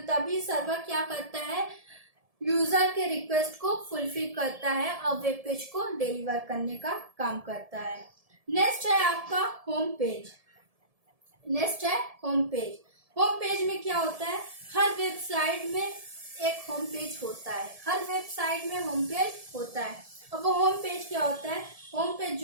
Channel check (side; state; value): left; late; 1.7 ms